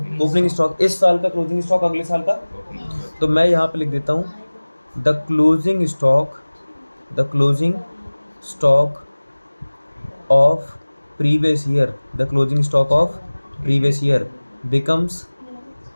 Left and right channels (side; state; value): both; inverted; correlation -1.00